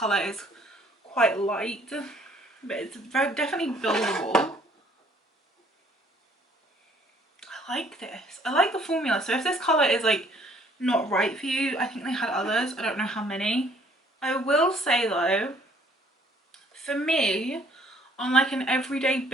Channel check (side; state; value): both; normal; correlation 0.61